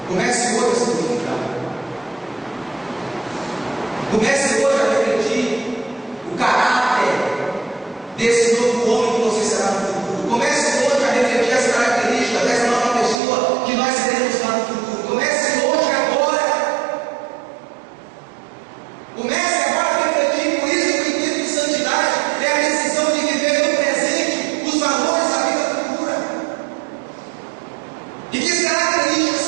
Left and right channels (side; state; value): left; drops out; at 13.2 s